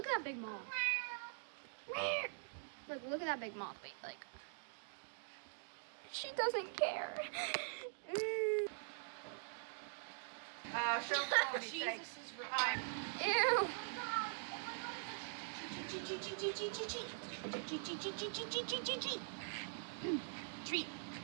at that big moth. Look at that big moth. Wait, like. She doesn't care. She'll call me. Jesus is right. Ew.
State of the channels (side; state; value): left; silent; digital silence